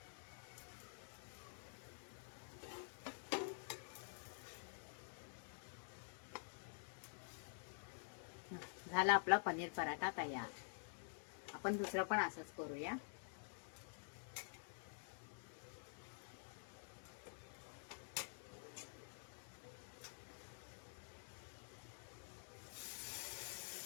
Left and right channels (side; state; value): right; silent; digital silence